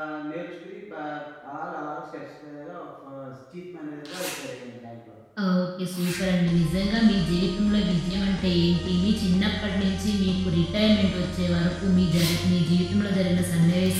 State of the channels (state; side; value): identical; both; correlation 1.00